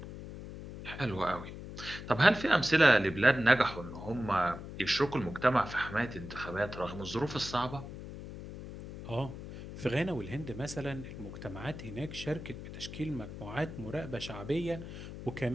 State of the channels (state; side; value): noise; left; hum, 11 dB below the sound